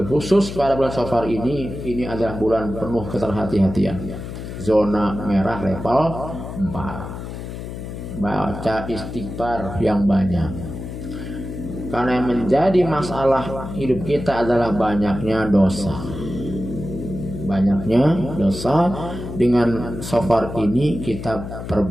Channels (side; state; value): left; noise; hum, 9 dB below the sound